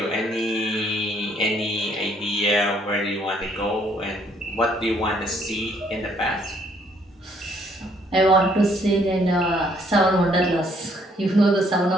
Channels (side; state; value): both; normal; correlation 0.66